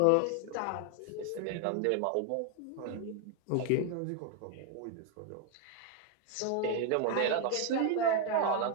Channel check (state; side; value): different; both; correlation 0.01